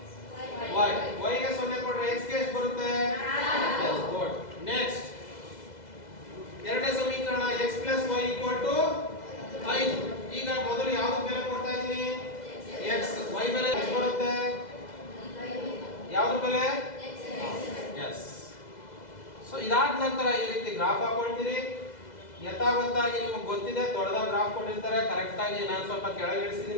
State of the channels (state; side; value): late; right; 2.0 ms